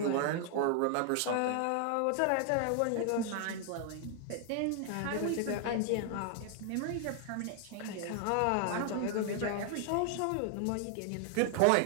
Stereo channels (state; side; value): different; both; correlation 0.00